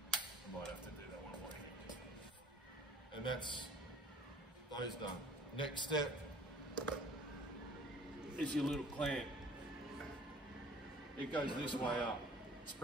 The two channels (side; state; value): both; normal; correlation 0.51